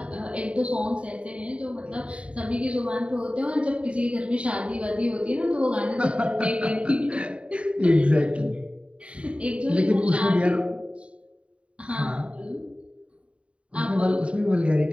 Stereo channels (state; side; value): late; left; 0.062 ms